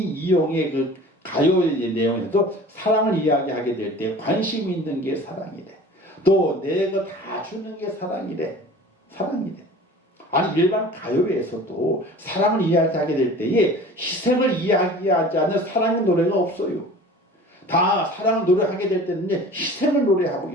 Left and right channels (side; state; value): both; normal; correlation 0.42